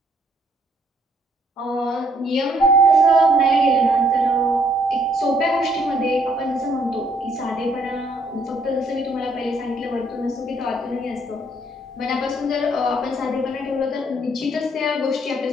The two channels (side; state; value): both; normal; correlation 0.67